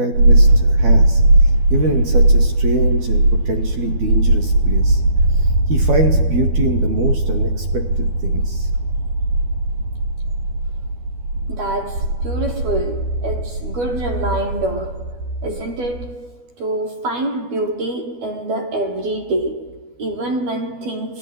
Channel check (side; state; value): left; late; 12 ms